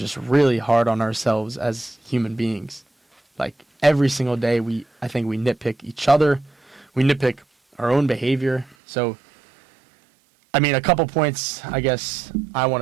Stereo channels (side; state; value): left; drops out; at 8.8 s